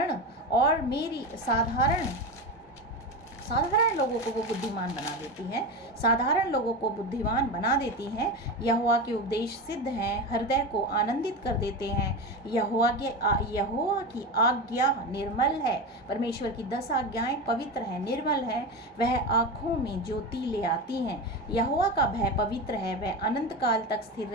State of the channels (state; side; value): normal; both; correlation 0.21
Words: लोगों को वो बुद्धिमान बना देती हैं, साधारण लोगों को बुद्धिमान बना देती हैं। यहोवा के उपदेश सिद्ध हैं, हृदय को आनंदित कर देते हैं। यहोवा की आज्ञा निर्मल है। परमेश्वर की 10 आज्ञाएं पवित्र हैं, निर्मल हैं, वह आँखों में ज्योति ले आती हैं। यहोवा का भय पवित्र है, वह अनंत काल तक स्थिर